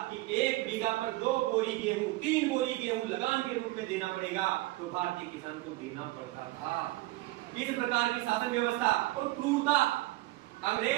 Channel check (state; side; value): quieter; left; 19.2 dB